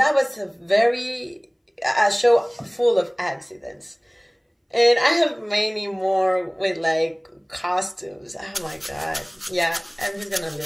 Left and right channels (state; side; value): identical; both; correlation 1.00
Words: was a show full of accidents. And I have many more with like costumes. Oh my God. Yeah, I'm just gonna